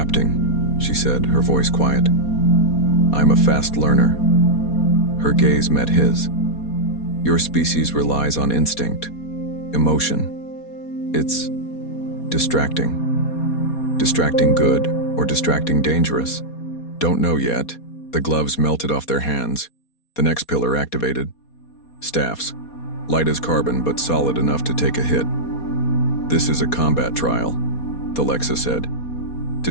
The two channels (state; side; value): late; right; 4.2 ms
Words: she said, her voice quiet. I'm a fast learner. Her gaze met his. Your species relies on instinct, emotion. It's distracting. Distracting good or distracting dangerous. Don't know yet. The gloves melted off their hands. The next pillar activated. Staffs. Light as carbon, but solid enough to take a hit. This is a combat trial, Alexa said. To